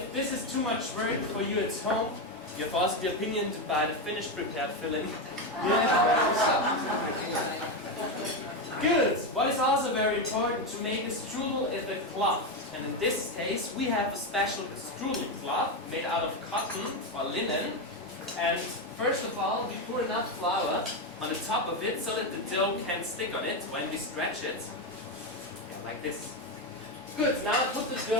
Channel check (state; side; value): normal; both; correlation 0.11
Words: this is too much work for you at home, you have also the opinion to buy the finished prepared filling. Good! What is also very important to make a strudel is the cloth. And in this case we have a special strudel cloth made out of cotton or linen. And first of all we pour enough flour on the top of it so that the dough can stick on it when we stretch it. Yeah, like this. Good, now put the